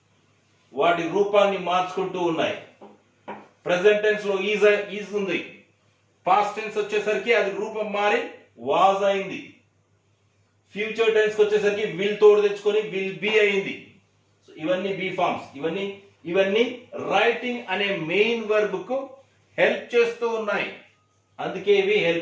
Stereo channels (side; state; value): both; identical; correlation 1.00